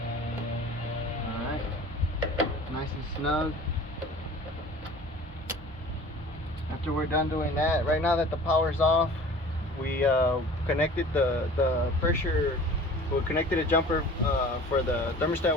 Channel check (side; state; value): both; normal; correlation 0.44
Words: Nice and snug. After we're done doing that, right now that the power's off, we connected the pressure, we connected a jumper for the